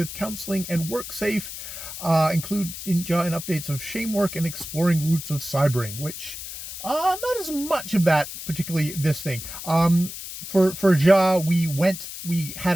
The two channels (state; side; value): noise; left; hiss, 10 dB below the sound